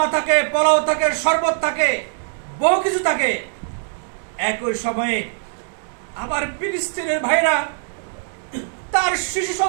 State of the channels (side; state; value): left; silent; digital silence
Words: থাকে, পোলাও থাকে, শরবত থাকে, বহু কিছু থাকে। একই সময়ে আবার ফিলিস্তিনের ভাইরা তার শিশু